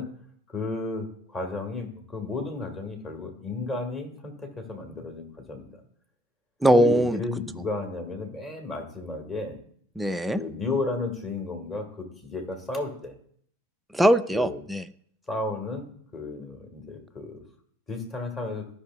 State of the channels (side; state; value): both; normal; correlation 0.72